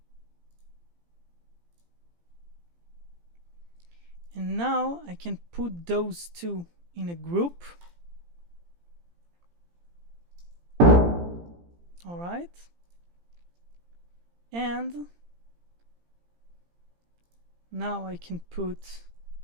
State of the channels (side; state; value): left; late; 17 ms